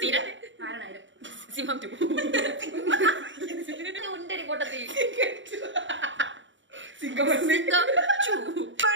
സിംഹം 2, ഉണ്ടടി കൊട്ടത്തി, സിംഗമണ്ണ്,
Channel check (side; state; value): left; late; 0.55 ms